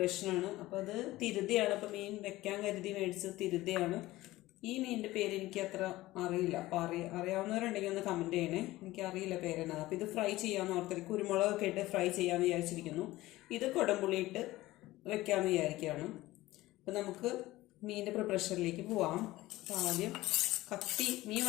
അപ്പോൾ അത് തിരുതയാണ്. അപ്പോൾ മീൻ വെക്കാൻ കരുതി മേടിച്ചത് തിരുതയാണ്. ഈ മീനിൻ്റെ പേര് എനിക്ക് അത്ര അറിയില്ല. അപ്പോൾ അറിയാവുന്നവരുണ്ടെങ്കിൽ ഒന്ന് കമൻറ്റ് ചെയ്യണേ. എനിക്കറിയില്ല പേരെന്നാണ്. അപ്പോൾ ഇത് ഫ്രൈ ചെയ്യാമെന്ന് ഓർത്തിട്ട് കുരുമുളകൊക്കെ ഇട്ട് ഫ്രൈ ചെയ്യാമെന്ന് വിചാരിച്ചിരിക്കുന്നു. ഇത് കുടംപുളിയിട്ട് വെക്കാമെന്ന് വിചാരിക്കുകയാണ്. അപ്പോൾ നമുക്ക് മീനിൻ്റെ പ്രിപ്പറേഷനിലേക്ക് പോവാം. അപ്പോൾ ആദ്യം മീൻ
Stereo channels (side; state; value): right; quieter; 17.6 dB